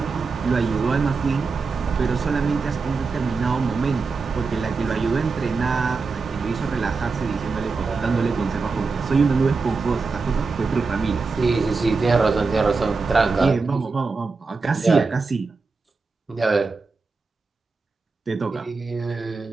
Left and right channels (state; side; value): quieter; left; 4.4 dB